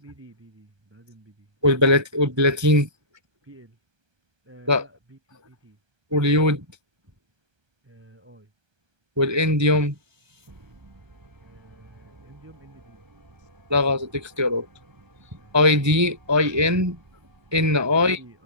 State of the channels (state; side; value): late; left; 1.3 ms